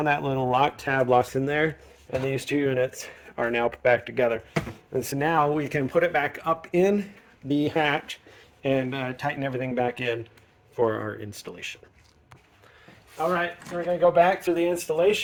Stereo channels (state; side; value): identical; both; correlation 1.00